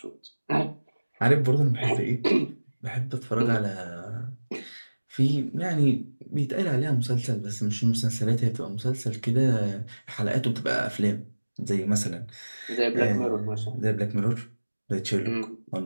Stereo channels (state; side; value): inverted; both; correlation -1.00